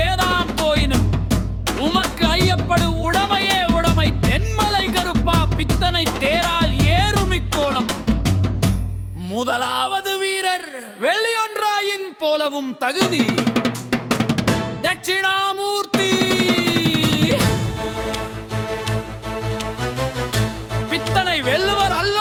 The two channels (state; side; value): identical; both; correlation 1.00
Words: போயினும் உமக்கு ஐயப்படு உடமையே உடமை. தென்மலை கருப்பா பித்தனை தேரால் ஏறுமிக்கோணம். முதலாவது வீரர் வெள்ளியொன்றாயின் போலவும் தகுதி தட்சிணாமூர்த்தி. பித்தனை வெல்லுவர்